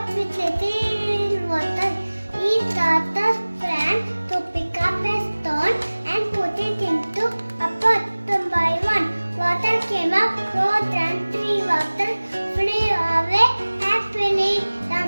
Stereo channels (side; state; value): both; inverted; correlation -1.00